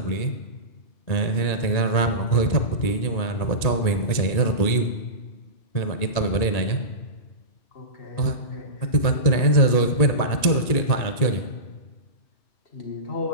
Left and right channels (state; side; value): late; right; 1.9 ms